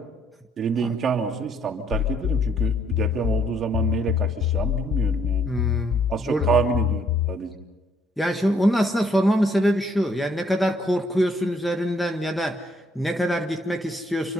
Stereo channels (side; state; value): both; normal; correlation 0.68